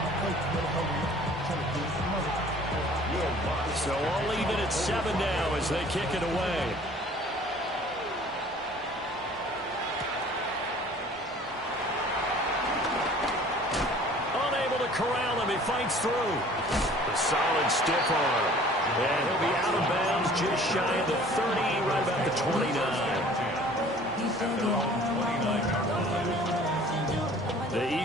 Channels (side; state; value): both; normal; correlation 0.50